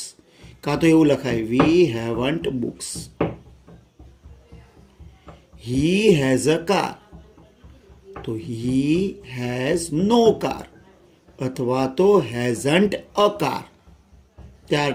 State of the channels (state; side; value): identical; both; correlation 1.00